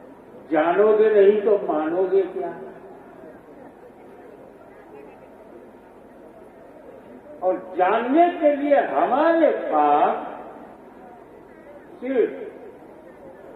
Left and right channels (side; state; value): both; identical; correlation 1.00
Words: जानोगे नहीं तो मानोगे क्या? और जानने के लिए हमारे पास सिर्फ